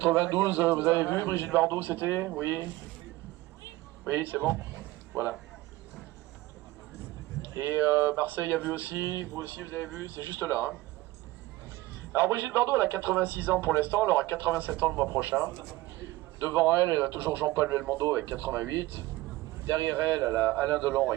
vous avez vu Brigitte Bardot, c'était? Oui. Oui, c'est bon. Voilà. Et Marseille a vu aussi, vous aussi vous avez vu, c'est juste là. Hein. Alors Brigitte Bardot, elle a 86 ans pour l'instant, elle aura 87 ans le mois prochain. Devant elle, elle a toujours Jean-Paul Belmondo avec 88. Derrière elle, elle a Alain Delon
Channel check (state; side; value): quieter; left; 18.7 dB